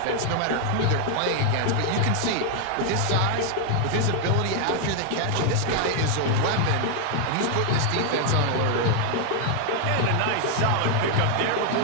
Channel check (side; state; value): both; different; correlation 0.00